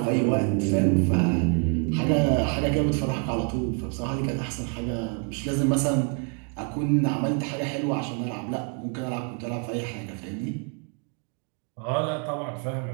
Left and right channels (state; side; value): quieter; left; 37.8 dB